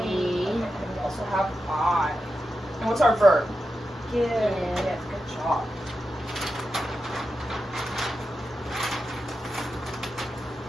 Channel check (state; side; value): normal; both; correlation 0.89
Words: and we also have I. And what's our verb? Give. Good job.